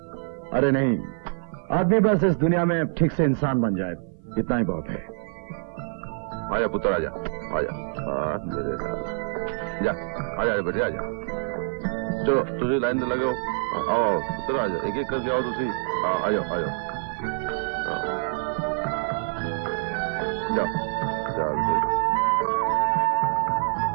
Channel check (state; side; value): silent; left; 55 dB below the other